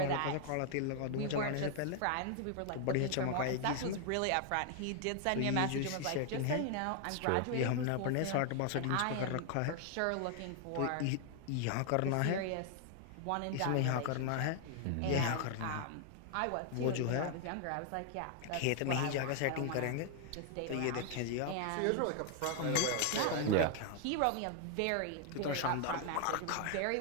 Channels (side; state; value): both; different; correlation 0.00